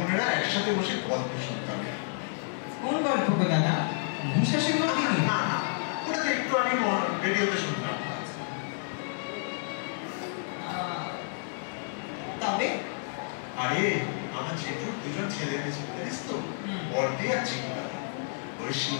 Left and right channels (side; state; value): right; silent; digital silence